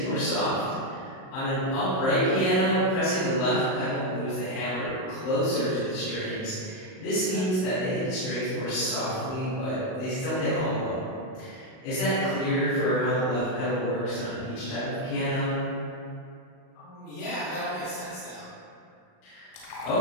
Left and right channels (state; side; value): late; right; 38 ms